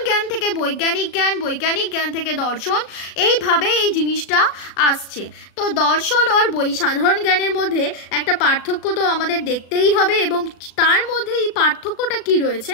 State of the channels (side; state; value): right; late; 36 ms